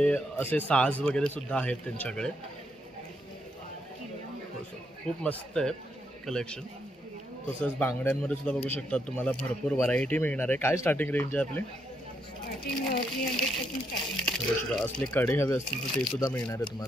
असे साज वगैरे सुद्धा आहेत त्यांच्याकडे. खूप मस्त आहे कलेक्शन. तसंच बांगड्यांमध्ये सुद्धा बघू शकतात तुम्हाला भरपूर व्हरायटी मिळणार आहे. काय स्टार्टिंग रेंज आहे आपली? असले कडे हवे असतील तर ते सुद्धा मिळणार आहे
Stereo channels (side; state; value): both; normal; correlation 0.77